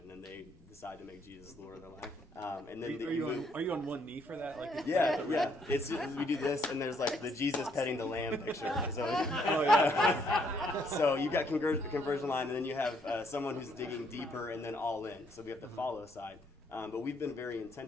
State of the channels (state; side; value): normal; both; correlation 0.70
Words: and they decide to make Jesus the Lord of their life. And then are you on one knee for that? Yeah. We do this, and there's the Jesus petting the lamb picture. So, so you've got conversion line, and then you have someone who's digging deeper, and then all in. So we have the follow side. But we've been very